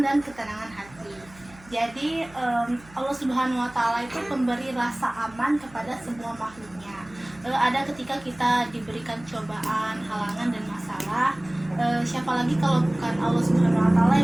dan ketenangan hati. Jadi Allah Subhanahu wa taala itu pemberi rasa aman kepada semua makhluknya. Ada ketika kita diberikan cobaan, halangan dan masalah, siapa lagi kalau bukan Allah Subhanahu wa taala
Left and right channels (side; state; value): right; noise; hum, 23 dB below the sound